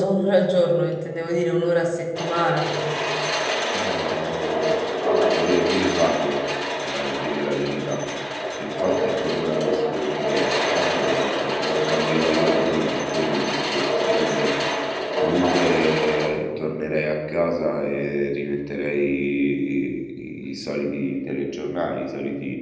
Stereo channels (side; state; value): both; identical; correlation 1.00